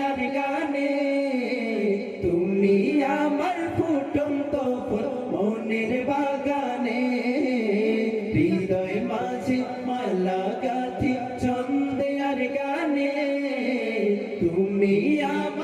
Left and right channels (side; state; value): both; identical; correlation 1.00